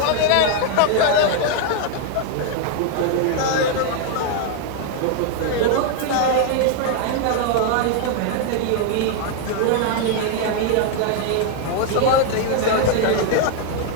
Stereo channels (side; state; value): both; different; correlation 0.00